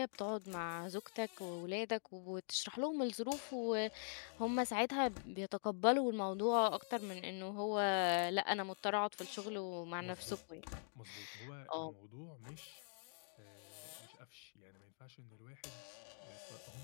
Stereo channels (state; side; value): silent; right; digital silence